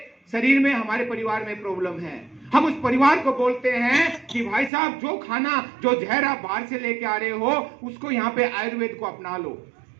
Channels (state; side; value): drops out; left; at 4.7 s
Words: शरीर में, हमारे परिवार में प्रॉब्लम है। हम उस परिवार को बोलते हैं कि भाई साहब जो खाना, जो जहर आप बाहर से लेके आ रहे हो, उसको यहाँ पे आयुर्वेद को अपना लो।